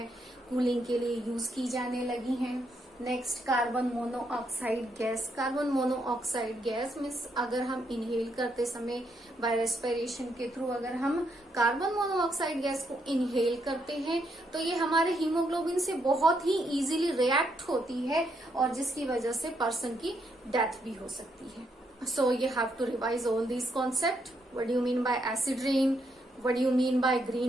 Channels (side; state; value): both; normal; correlation 0.77